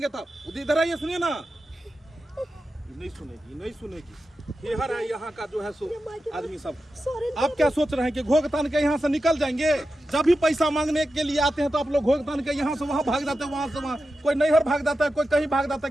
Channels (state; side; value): normal; both; correlation 0.91